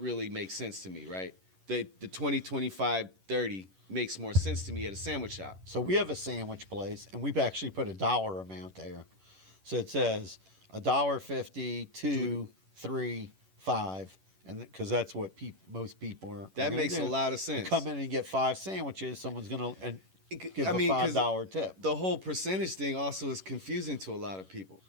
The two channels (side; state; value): left; late; 11 ms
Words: make sense to me, right? The 20, 25, 30 makes more sense to me at a sandwich shop. So we have a sandwich place, and we've actually put a dollar amount there. So it says $1.50, 2, 3, 5, and because that's what most people are. That gonna makes do. a lot of You sense. come in and get 5 sandwiches. Someone's gonna give I mean, a 'cause $5 tip. The whole percentage thing also is confusing to a lot of people.